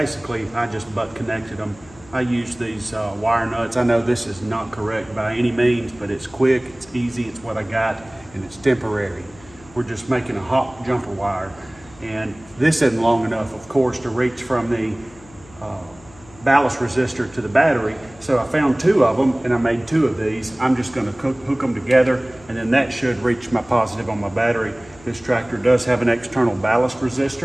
I just butt connected them. I used these wire nuts. I know this is not correct by any means, but it's quick, it's easy, it's what I got, and it's temporary. We're just making a hot jumper wire, and this isn't long enough, of course, to reach from the ballast resistor to the battery. So I found 2 of them, and I made 2 of these. I'm just going to hook them together, and then that should reach my positive on my battery. This tractor does have an external ballast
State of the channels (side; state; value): left; noise; hum, 23 dB below the sound